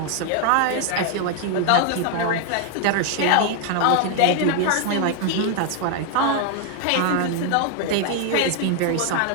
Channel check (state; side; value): different; both; correlation 0.00